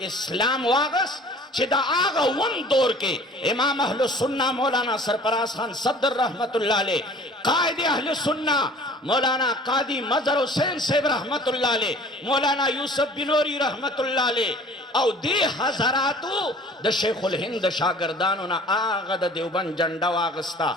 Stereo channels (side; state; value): both; normal; correlation 0.48